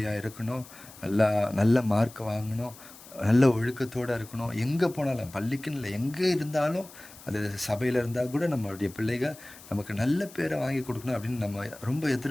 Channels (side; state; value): left; noise; hiss, 19 dB below the sound